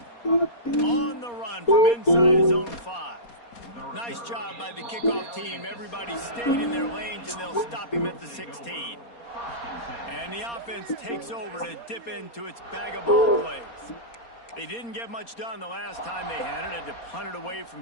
it. On the run from inside his own 5. Nice job by the kickoff team. Everybody stayed in their lanes, and they'll stop him at the 16. And the offense takes over to dip into its bag of ball plays. They didn't get much done the last time they had it. Had to punt it away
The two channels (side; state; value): right; late; 4.2 ms